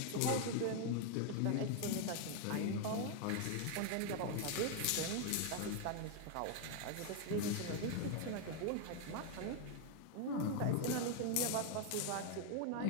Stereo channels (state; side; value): different; both; correlation 0.00